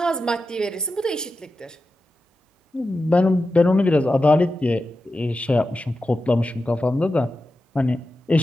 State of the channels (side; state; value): both; normal; correlation 0.91